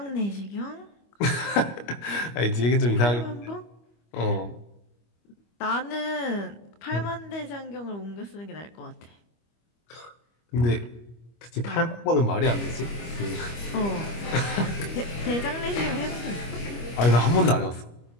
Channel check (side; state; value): right; late; 25 ms